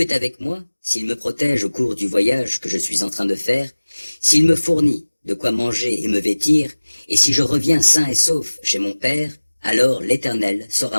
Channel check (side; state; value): both; inverted; correlation -1.00